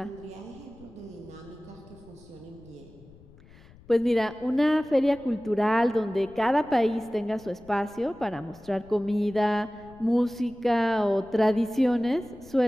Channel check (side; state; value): left; noise; rumble, 24 dB below the sound